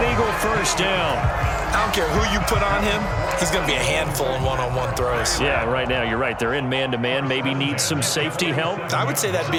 Eagle first down. I don't care who you put on him. He's going to be a handful in one-on-one throws. Yeah, right now you're right. They're in man-to-man. Maybe needs some safety help. I would say that'd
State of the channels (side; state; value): both; identical; correlation 1.00